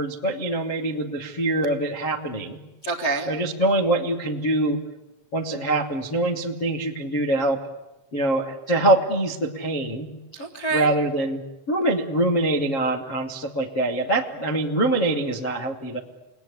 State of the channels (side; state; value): right; late; 7.4 ms